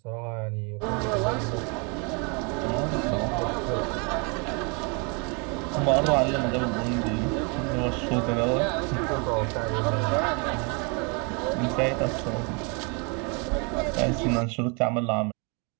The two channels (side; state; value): left; quieter; 33.7 dB